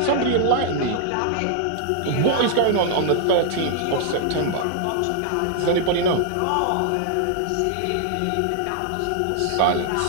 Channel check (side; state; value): both; different; correlation 0.00